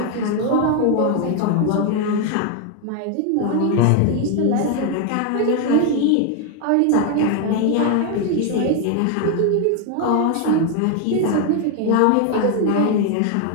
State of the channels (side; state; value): both; different; correlation 0.01